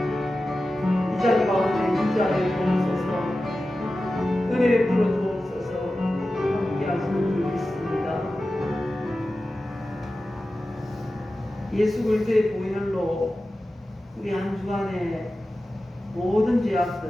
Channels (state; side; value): normal; both; correlation 0.94